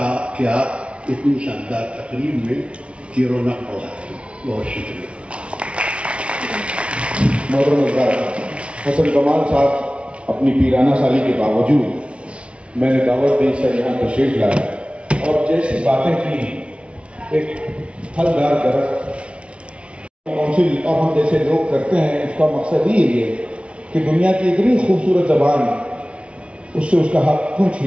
آپ اتنی شاندار تقریب میں کی رونق بڑھا. بہت شکریہ. محترم حسن کمال صاحب اپنی پیرانہ سالی کے باوجود میں نے دعوت دی سر یہاں تشریف لایا اور جیسی باتیں کی ایک پھلدار درخت کونسل اور ہم جیسے لوگ کرتے ہیں، اس کا مقصد یہ ہے کہ دنیا کی اتنی خوبصورت زبان اس سے اس کا حق کیوں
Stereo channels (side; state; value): left; late; 0.060 ms